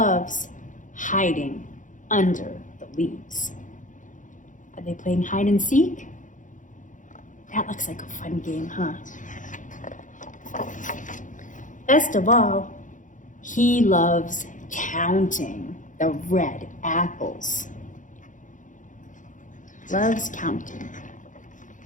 hiding under the leaves. Are they playing hide and seek? That looks like a fun game, huh? Best of all, he loves counting the red apples. Loves counting.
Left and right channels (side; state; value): right; late; 0.37 ms